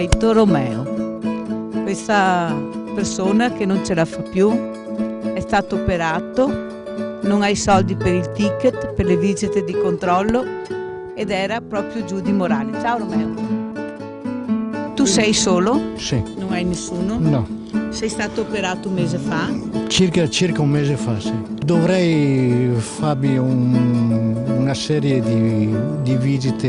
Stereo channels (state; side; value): identical; both; correlation 1.00